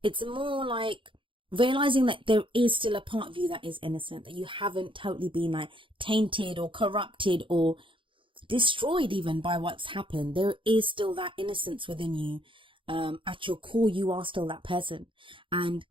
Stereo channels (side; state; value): left; late; 0.25 ms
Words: It's more like realizing that there is still a part of you that is innocent, that you haven't totally been tainted or corrupted or destroyed even by what's happened. There is still that innocence within you. At your core, you are still that person. And